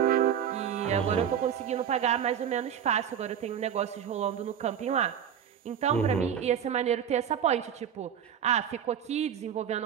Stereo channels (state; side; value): quieter; left; 8.8 dB